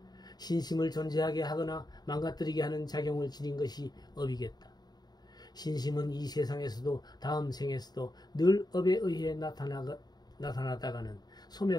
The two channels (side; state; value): right; late; 0.20 ms